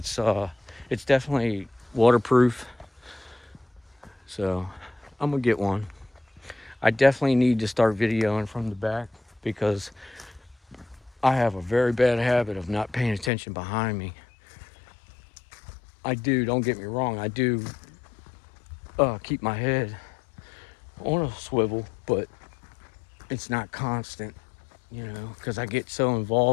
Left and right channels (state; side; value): drops out; right; at 13.3 s